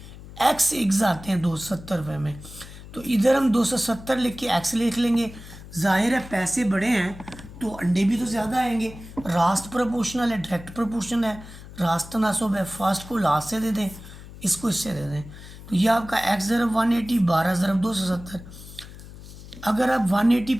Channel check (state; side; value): noise; left; hum, 16 dB below the sound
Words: एक्स एग्स आते हैं 270 रुपये में, तो इधर हम 270 लिख के एक्स लिख लेंगे। जाहिर है पैसे बड़े हैं तो अंडे भी तो ज़्यादा आएंगे, रास्त प्रोपोर्शनल है, डायरेक्ट प्रोपोर्शन है, रास्त तनासब है, फर्स्ट को लास्ट से दे दें, इसको इससे दे दें। तो ये आपका एक्स ज़रब 180, 12 ज़रब 270। अगर आप 180